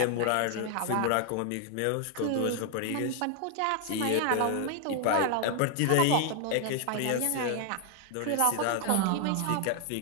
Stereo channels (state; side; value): different; both; correlation 0.00